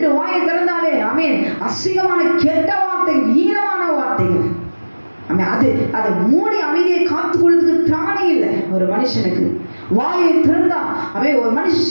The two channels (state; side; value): inverted; both; correlation -1.00